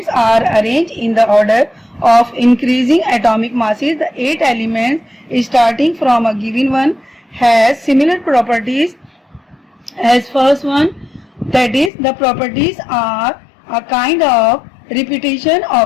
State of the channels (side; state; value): right; drops out; at 11.9 s